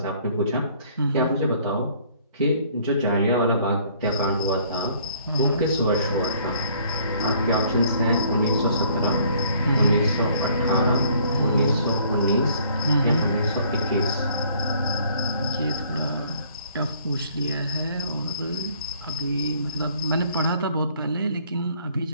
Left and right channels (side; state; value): both; inverted; correlation -0.60